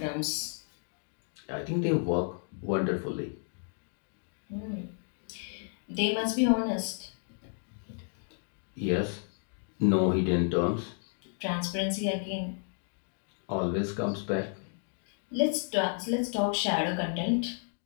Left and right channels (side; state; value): right; silent; 56 dB below the other